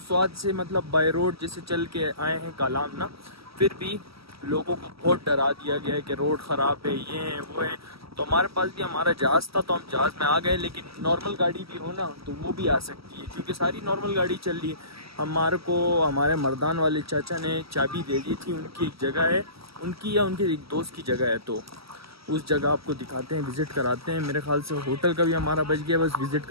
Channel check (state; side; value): late; left; 0.76 ms